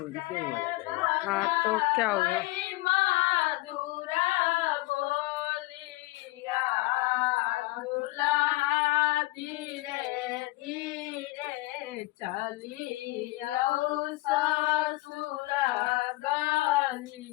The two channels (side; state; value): right; quieter; 20.8 dB